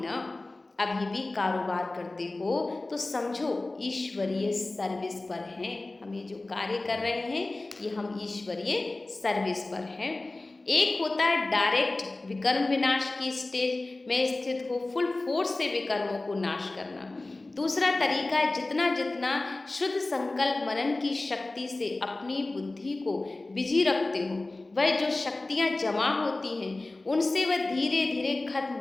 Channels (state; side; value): quieter; right; 3.0 dB